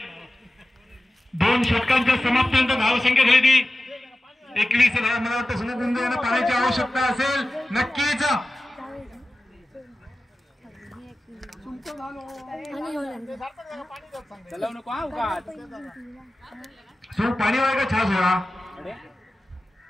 2 षटकांच्या समाप्तीनंतर धावसंख्या झाली ती 21 धावा। मला वाटतं सुमुख मुंजे यांना पाण्याची आवश्यकता असेल, नक्कीच पाणी वाय का छास होला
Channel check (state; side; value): normal; both; correlation 0.95